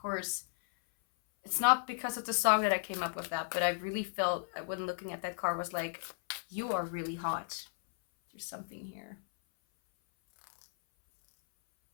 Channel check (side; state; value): right; silent; 55 dB below the other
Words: it's not because of the song that I came up with that, but I really felt when looking at that card was like, you are really hot. There's something here.